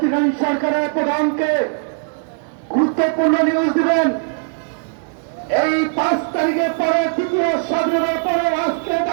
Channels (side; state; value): left; silent; digital silence